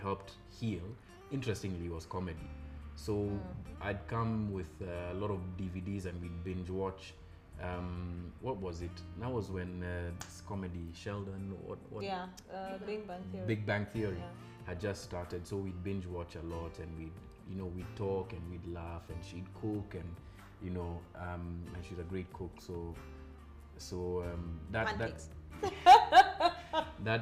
heal, interestingly, was comedy. So I'd come with a lot of DVDs and we'd binge watch What was it? That was when this comedy Sheldon, Big Bang Theory. Big Bang Theory Yeah. had just started, so we'd binge watch a lot, and we'd talk and we'd laugh, and she'd cook, and and she's a great cook, so Pancakes.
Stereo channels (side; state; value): both; identical; correlation 1.00